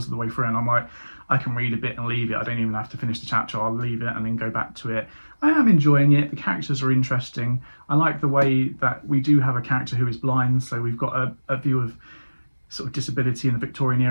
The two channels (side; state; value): both; inverted; correlation -1.00